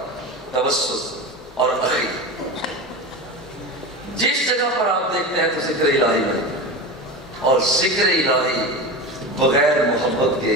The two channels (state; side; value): normal; both; correlation 0.26